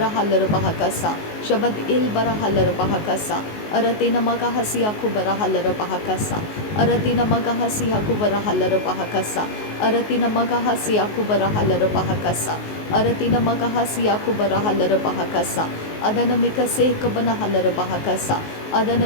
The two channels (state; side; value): late; right; 19 ms